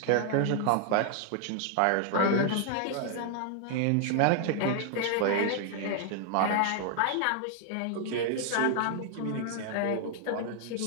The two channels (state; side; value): different; both; correlation 0.00